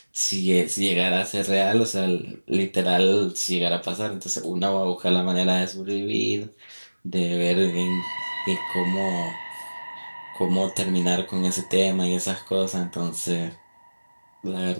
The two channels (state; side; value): inverted; both; correlation -1.00